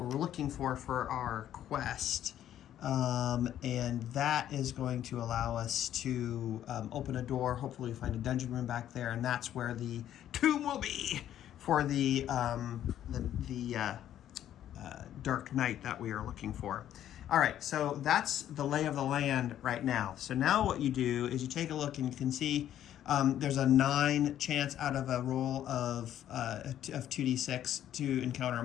looking for our quest. And that is going to allow us to open a door. Hopefully we find a dungeon room back there, and that's where the tomb will be for the Dark Knight that we are looking for. All right, so that's the lay of the land right now. So now what you do is you take a look and you can see there's a 9 chance out of a roll of 2d6 to encounter a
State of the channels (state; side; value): quieter; right; 11.3 dB